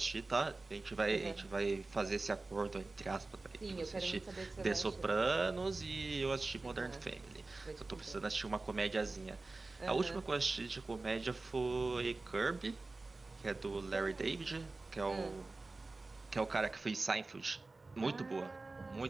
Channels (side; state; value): left; quieter; 3.4 dB